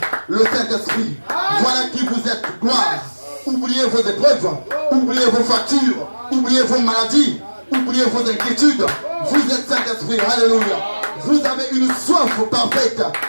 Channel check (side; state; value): both; inverted; correlation -1.00